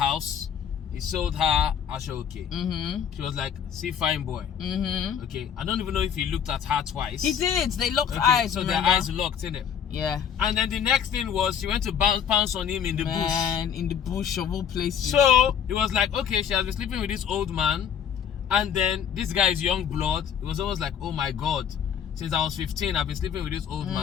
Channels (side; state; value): right; quieter; 8.3 dB